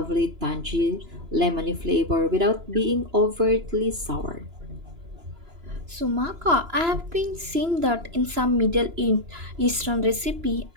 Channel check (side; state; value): left; late; 2.9 ms